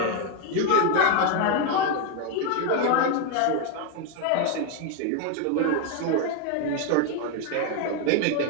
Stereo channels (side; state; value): both; different; correlation 0.01